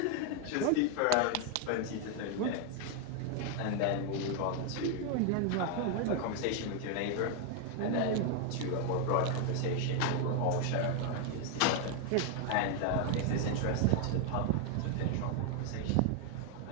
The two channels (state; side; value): different; both; correlation 0.01